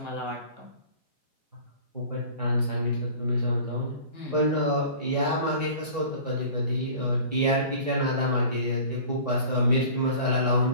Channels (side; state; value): both; inverted; correlation -0.42